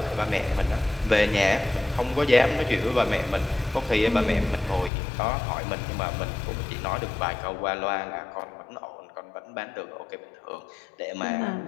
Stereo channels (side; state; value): right; drops out; at 4.9 s